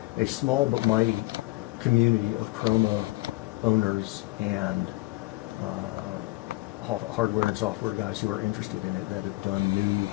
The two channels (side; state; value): right; quieter; 21.6 dB